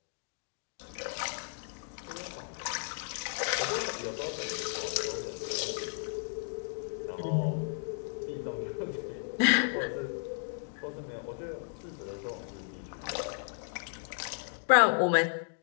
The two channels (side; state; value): right; silent; digital silence